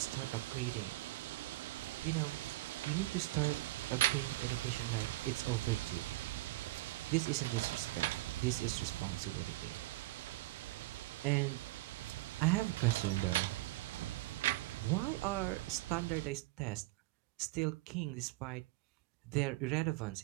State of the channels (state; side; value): quieter; left; 19.1 dB